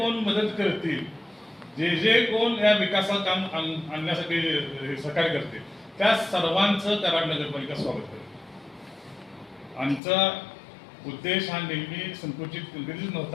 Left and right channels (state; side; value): drops out; right; at 10.0 s